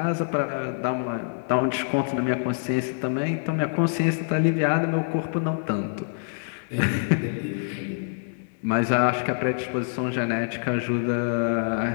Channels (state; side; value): silent; right; digital silence